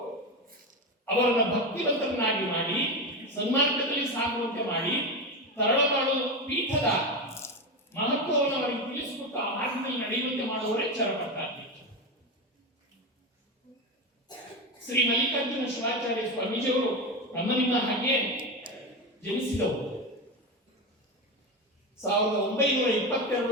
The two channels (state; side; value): normal; both; correlation 0.17